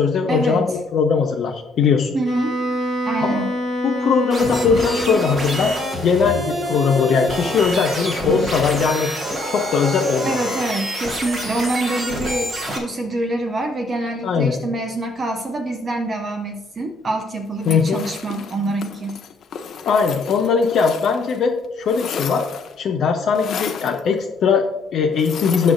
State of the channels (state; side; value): quieter; right; 3.4 dB